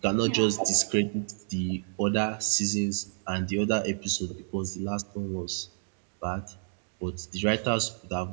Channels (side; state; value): left; silent; digital silence